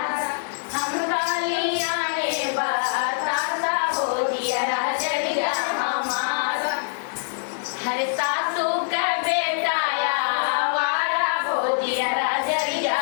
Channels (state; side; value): silent; right; 63 dB below the other